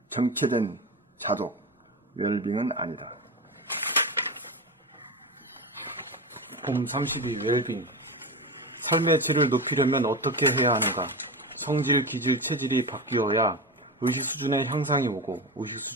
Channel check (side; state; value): both; normal; correlation 0.22